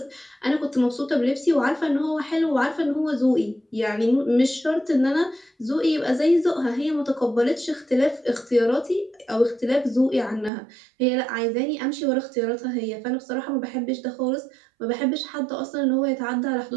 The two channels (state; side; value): drops out; left; at 10.5 s